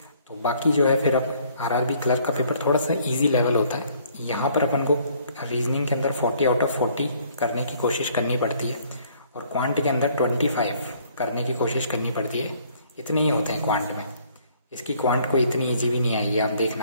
तो बाकी जो है फिर अब आरआरबी क्लर्क का पेपर थोड़ा सा इजी लेवल होता है। यहाँ पर अपन को रीजनिंग के अंदर 40 आउट ऑफ 40 करने की कोशिश करनी पड़ती है, और क्वांट के अंदर 25 करने की कोशिश करनी पड़ती है। इतने ही होते हैं क्वांट में। इसकी क्वांट को इतनी ईजी भी नहीं आएगी, आप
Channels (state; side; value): inverted; both; correlation -0.61